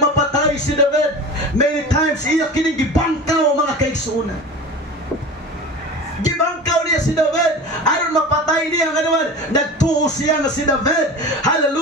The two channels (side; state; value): both; normal; correlation 0.33